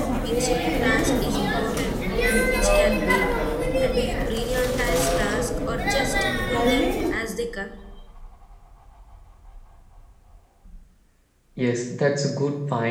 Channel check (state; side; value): identical; both; correlation 1.00